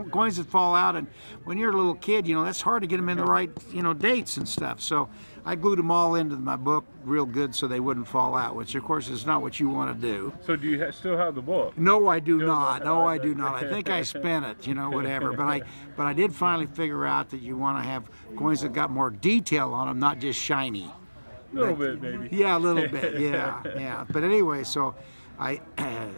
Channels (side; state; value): both; inverted; correlation -1.00